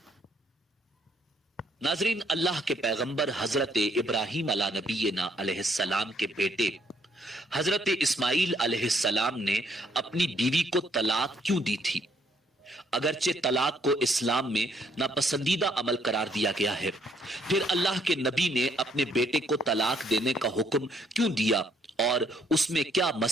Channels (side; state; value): both; normal; correlation 0.68